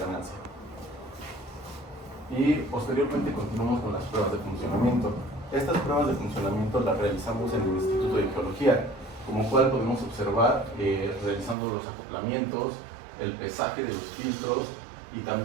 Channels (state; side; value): drops out; left; at 11.6 s